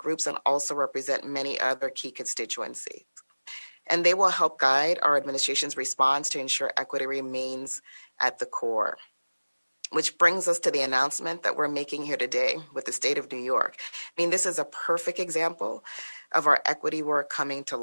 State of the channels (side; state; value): both; inverted; correlation -1.00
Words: and also represent many other key constituencies. And they will help guide our administration's response to ensure equity remains at the core. Which brings us to the announcement that we're making here today with the state of New York. This is a perfect example of our equity work coming to